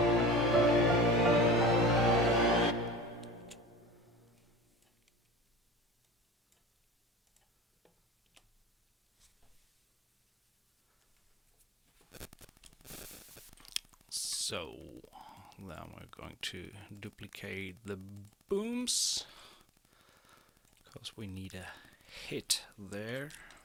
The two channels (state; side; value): normal; both; correlation 0.41